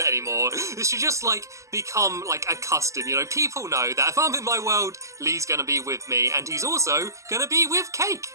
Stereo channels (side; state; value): left; late; 0.15 ms